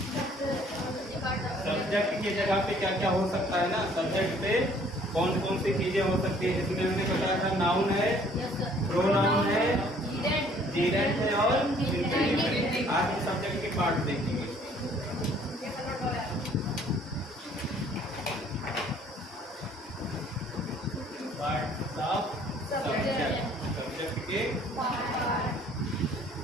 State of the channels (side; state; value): both; normal; correlation 0.58